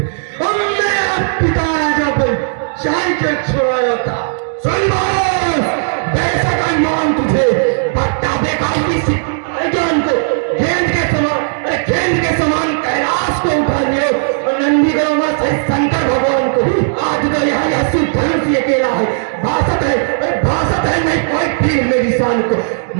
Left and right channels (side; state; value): left; silent; digital silence